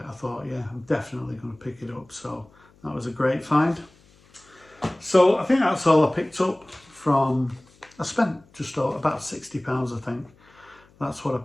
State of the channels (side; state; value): left; noise; hum, 30 dB below the sound